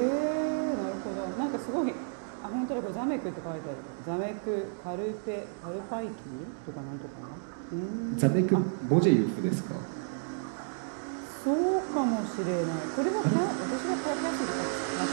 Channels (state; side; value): silent; left; digital silence